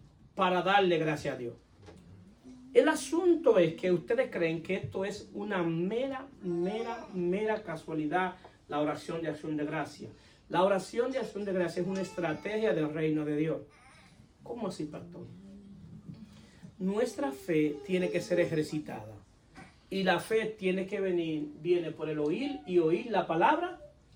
para darle gracias a Dios? El asunto es que ustedes creen que esto es una mera casualidad, la oración de acción de gracia. La oración de acción de gracia es una estrategia del reino de Dios. ¿Cómo así, pastor? Nuestra fe tiene que ser ejercitada. Y la fe viene por el oír y oír la palabra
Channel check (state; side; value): identical; both; correlation 1.00